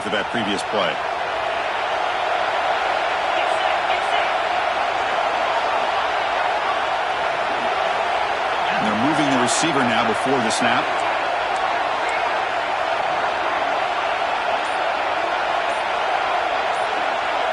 that previous play. receiver now before the snap.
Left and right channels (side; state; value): both; identical; correlation 1.00